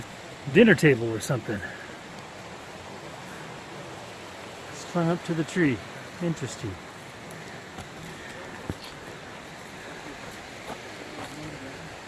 a dinner table or something. Strung up to the tree. Interesting.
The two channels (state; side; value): identical; both; correlation 1.00